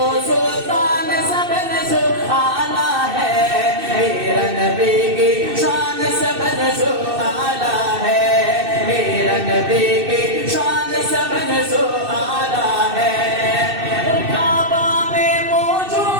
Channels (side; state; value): left; late; 2.6 ms